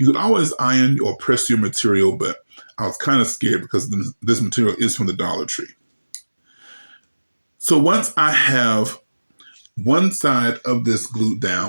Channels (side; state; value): both; inverted; correlation -1.00